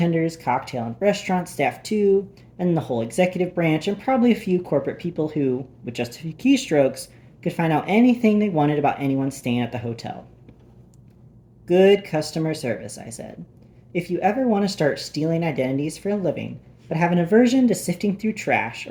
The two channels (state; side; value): identical; both; correlation 1.00